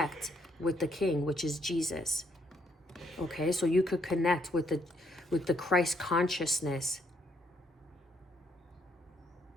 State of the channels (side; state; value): both; normal; correlation 0.72